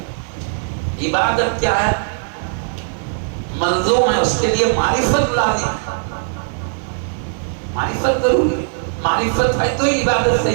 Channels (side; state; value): left; silent; digital silence